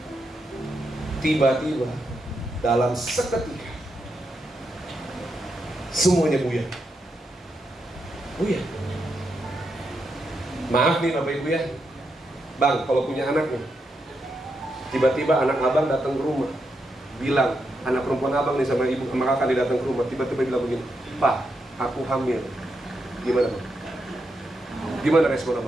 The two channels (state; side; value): normal; both; correlation 0.83